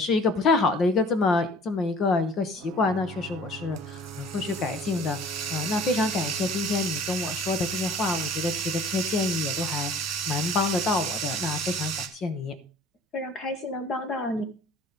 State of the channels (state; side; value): normal; both; correlation 0.49